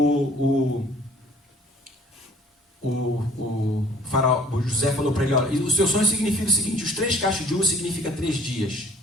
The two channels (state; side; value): normal; both; correlation 0.53